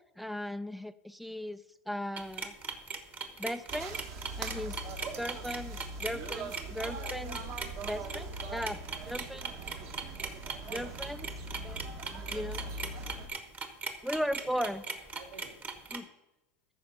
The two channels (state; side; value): normal; both; correlation 0.61